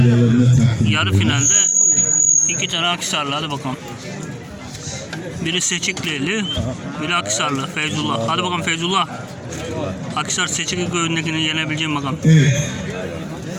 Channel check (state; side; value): identical; both; correlation 1.00